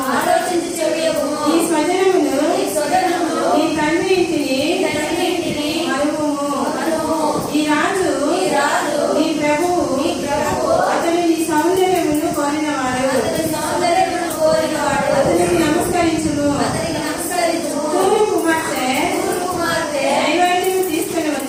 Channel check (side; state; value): both; identical; correlation 1.00